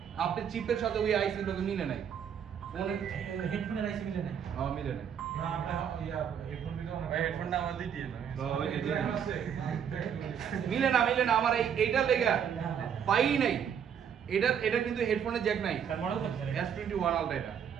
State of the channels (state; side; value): quieter; left; 8.2 dB